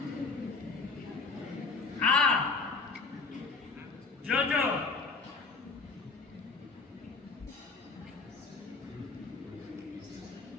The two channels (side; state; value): right; quieter; 4.1 dB